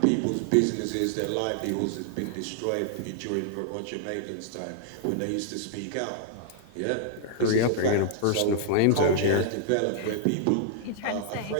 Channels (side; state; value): both; different; correlation -0.01